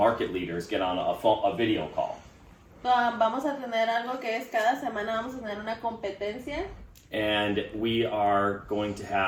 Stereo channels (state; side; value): identical; both; correlation 1.00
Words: leaders get on a video call. Vamos a tener algo que es cada semana vamos a tener una competencia. And we are going to